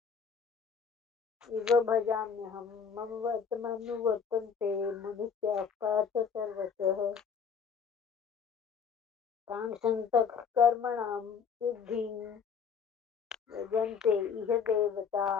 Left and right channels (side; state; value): right; quieter; 6.4 dB